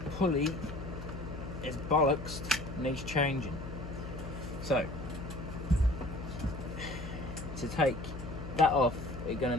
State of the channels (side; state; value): left; noise; hum, 9 dB below the sound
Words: pulley is bollocks, needs changing. So to take that off, we're going